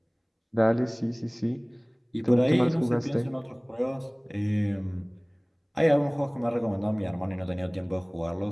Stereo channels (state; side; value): identical; both; correlation 1.00